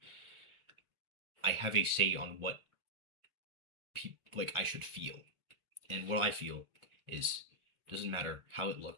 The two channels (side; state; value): left; late; 1.4 ms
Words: I have a say on what like I should feel. And what I feel is doesn't matter how it